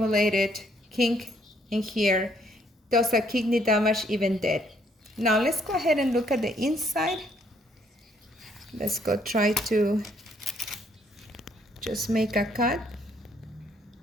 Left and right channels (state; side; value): normal; both; correlation 0.68